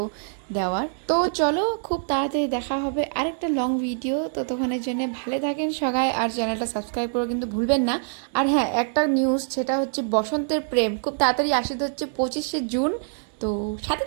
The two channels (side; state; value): left; silent; 62 dB below the other